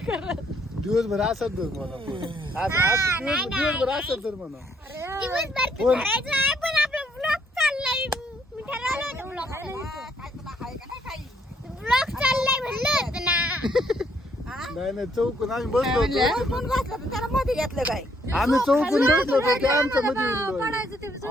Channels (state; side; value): normal; both; correlation 0.69